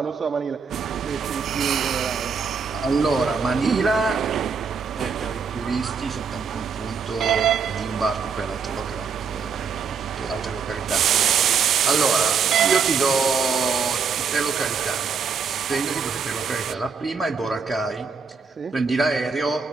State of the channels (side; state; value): left; quieter; 5.8 dB